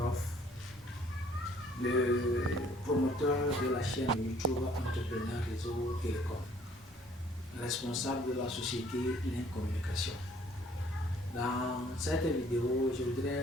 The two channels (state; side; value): normal; both; correlation 0.59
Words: le promoteur de la chaîne YouTube Entrepreneur Réseau Télécom, responsable de la société Link Communication. Dans cette vidéo, je